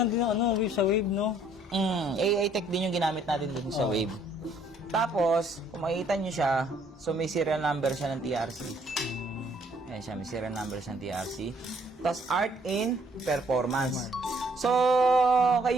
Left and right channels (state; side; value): normal; both; correlation 0.64